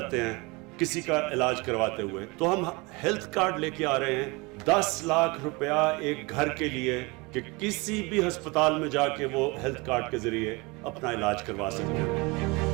हैं किसी का इलाज करवाते हुए। तो हम हेल्थ कार्ड लेके आ रहे हैं 10 लाख रुपया एक घर के लिए कि किसी भी अस्पताल में जाके वो हेल्थ कार्ड के जरिए अपना इलाज करवा सकते हैं।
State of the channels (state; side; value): quieter; left; 26.1 dB